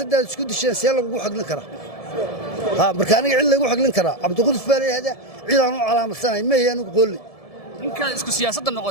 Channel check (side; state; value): right; late; 1.7 ms